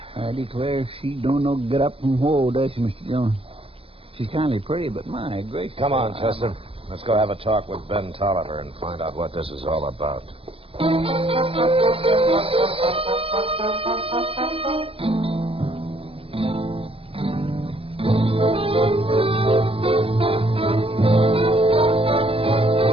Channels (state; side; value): late; left; 0.27 ms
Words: I declare she don't know get up from whoa, does she, Mr. Dillon? She's kindly pretty, but my gracious. Come on, Chester. Let's go have a talk with Ben Tolliver and find out what this is all about.